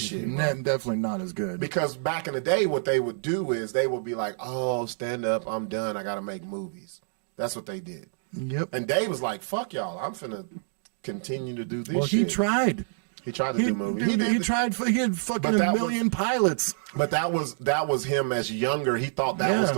Definitely not as good. Because back in the day, what they would do is they would be like, "Oh, stand up, I'm done. I got to make movies." That's what they did. Yep. And Dave was like, "Fuck y'all, I'm finna continue to do this." Well, shit. he tried. He tried to do movies. Dude, he did, tried. He had fucking But a that million pilots. but that was him as younger. He thought that was Yeah.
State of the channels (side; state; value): left; silent; digital silence